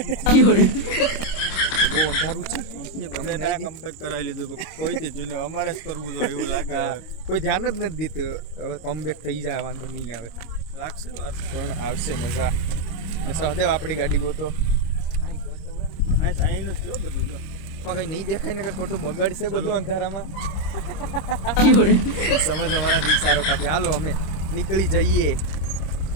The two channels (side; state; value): right; late; 26 ms